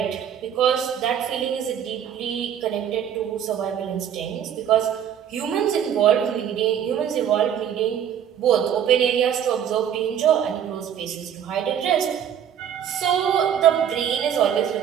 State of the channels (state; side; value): quieter; left; 9.2 dB